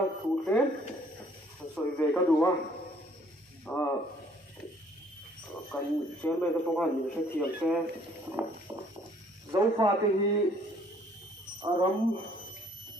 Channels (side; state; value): both; normal; correlation 0.61